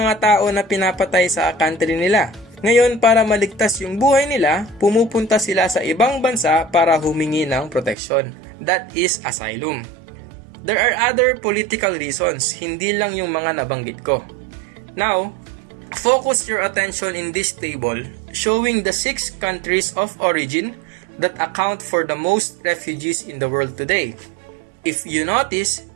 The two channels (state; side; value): drops out; left; at 8.0 s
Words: tao na pinapatay sa country nila. Ngayon, para maligtas yung buhay nila, pumupunta sila sa ibang bansa para humingi ng proteksyon. That is asylum. There are other political reasons, hindi lang yung mga nabanggit ko. Now, focus your attention in this table showing the 6 countries of origin that account for the most refugees in the world today. If you notice,